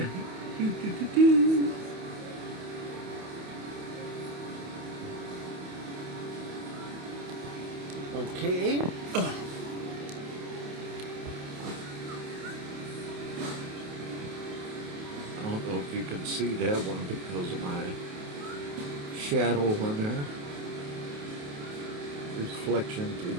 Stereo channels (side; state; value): left; late; 28 ms